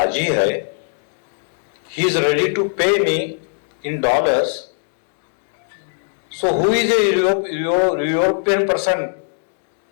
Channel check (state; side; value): silent; right; digital silence